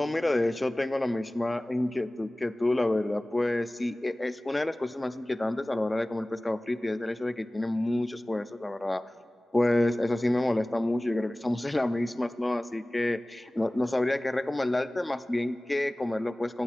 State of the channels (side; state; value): both; normal; correlation 0.98